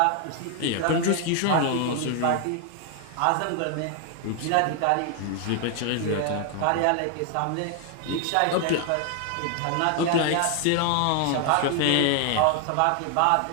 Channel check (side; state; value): both; different; correlation 0.00